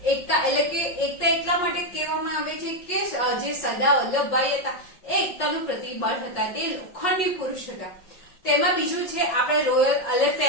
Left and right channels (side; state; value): right; late; 5.5 ms